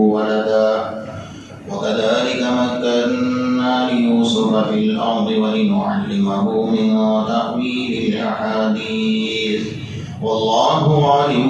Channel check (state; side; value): identical; both; correlation 1.00